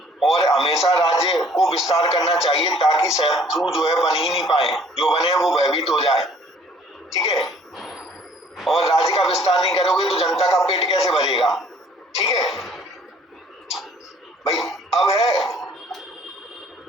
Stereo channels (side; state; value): both; normal; correlation 0.57